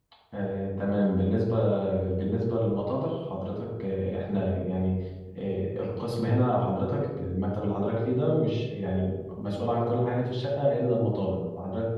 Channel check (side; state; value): both; identical; correlation 1.00